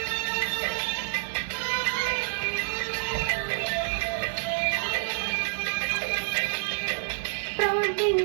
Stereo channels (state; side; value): silent; left; digital silence